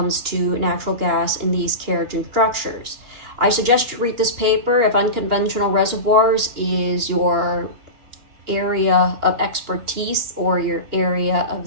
to natural gas in these kerogen structures. I suggest you read this paper if unconventional reservoirs is your area of expertise or your area of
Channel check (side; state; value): left; late; 2.8 ms